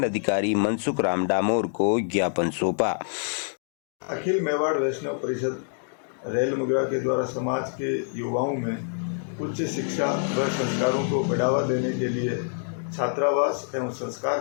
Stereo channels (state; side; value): silent; right; digital silence